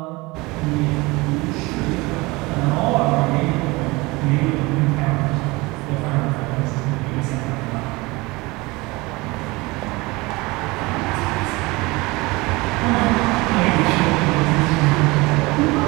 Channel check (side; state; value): left; quieter; 23.2 dB